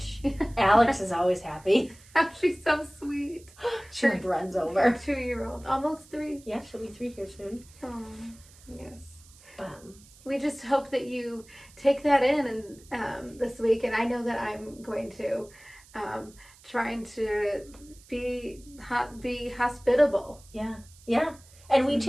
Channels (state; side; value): noise; right; hiss, 24 dB below the sound